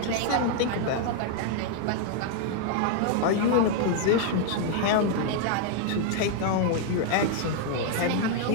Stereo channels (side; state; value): both; different; correlation 0.00